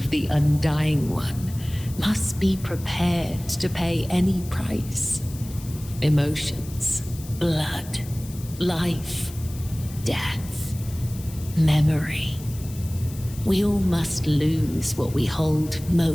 the Undying One, must be prepared to pay any price. Emotions, blood, life, death, memory. We all must lose what we hold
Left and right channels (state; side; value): noise; left; hiss, 17 dB below the sound